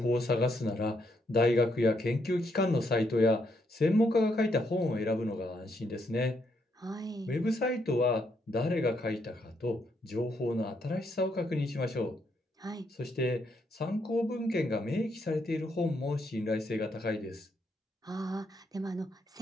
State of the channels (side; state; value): both; normal; correlation 0.76